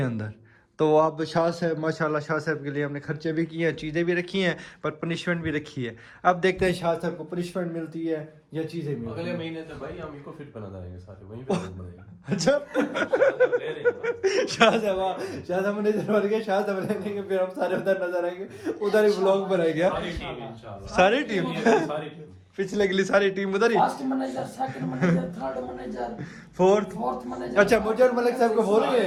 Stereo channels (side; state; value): both; identical; correlation 1.00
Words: अंदर। तो आप शाह साहब माशाल्लाह, शाह साहब के लिए हमने खर्चे भी किए हैं, चीज़ें भी रखी हैं, पर पनिशमेंट भी रखी है। अब देखते हैं शाह साहब को पनिशमेंट मिलती है या चीज़ें मिलती अगले हैं। महीने तो भाई हम इको फिट बना देंगे सारे, वहीं पे लोग बनाएंगे। अच्छा ले रहे हैं शाह साहब मैनेजर बन गए, शाह साहब लेंगे, फिर हम सारे उधर नजर आएंगे, उधर ही व्लॉग बनाएंगे। सारी टीम इंशाल्लाह, सारी टीम पिछले अगली सारी टीम उधर ही, first manager, second manager, third manager, fourth manager. अच्छा, मुझे और मलिक साहब को बोल रहे